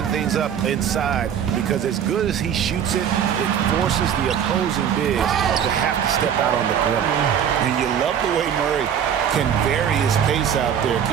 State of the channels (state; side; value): quieter; left; 8.7 dB